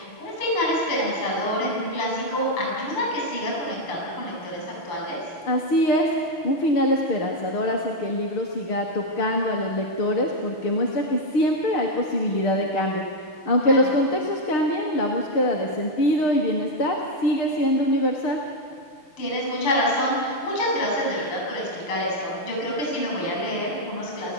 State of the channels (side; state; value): right; late; 6.5 ms